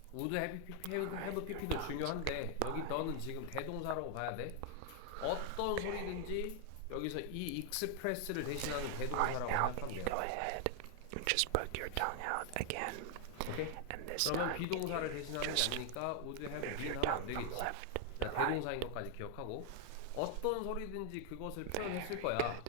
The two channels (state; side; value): different; both; correlation 0.00